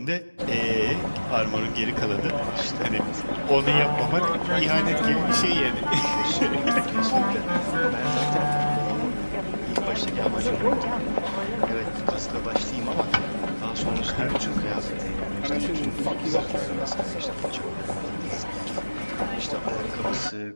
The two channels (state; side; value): inverted; both; correlation -1.00